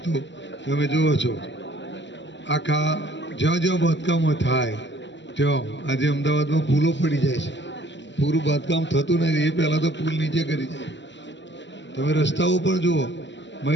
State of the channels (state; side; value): late; right; 0.53 ms